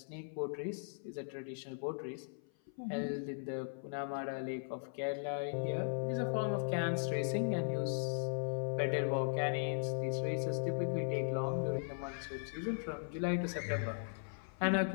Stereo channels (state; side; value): silent; right; 52 dB below the other